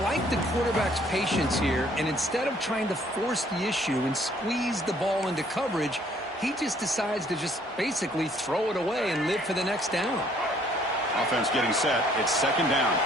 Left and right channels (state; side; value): normal; both; correlation 0.62